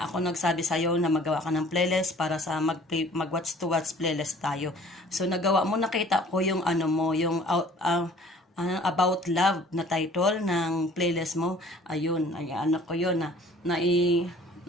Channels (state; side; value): normal; both; correlation 0.51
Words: nagsabi sa'yo na magawa ka ng playlist para sa mag-watch to watch playlist tayo. So nagawa mo, nakita ko yung ano mo, yung About Love na title ng playlist mo. Ayun, ay ano ko yun na